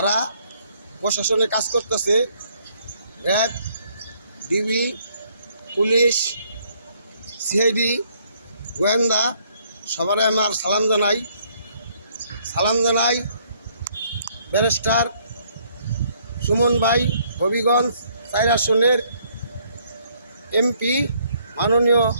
প্রশাসনে কাজ করতেছে, র্যাব, ডিবি, পুলিশ, সিআইডি, গোয়েন্দা, সবারই আমার সালাম জানাই ব্যারিস্টার সুমন ভাই, হবিগঞ্জ 4 আসনের এমপি, মাননীয়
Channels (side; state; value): both; inverted; correlation -0.66